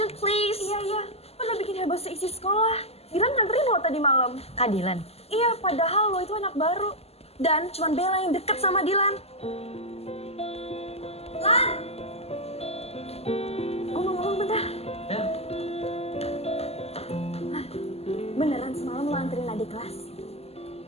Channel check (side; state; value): right; late; 0.29 ms